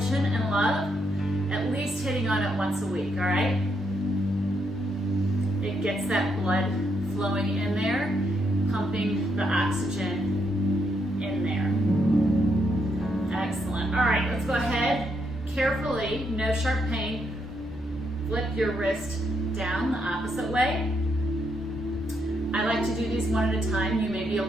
and love, at least hitting on it once a week, all right? It gets that blood flowing in there, pumping the oxygen in there. Excellent. All right, let's go ahead, carefully, no sharp pain, flip your wrist down the opposite way. I like to do these one at a time. You may be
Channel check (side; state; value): both; normal; correlation 0.78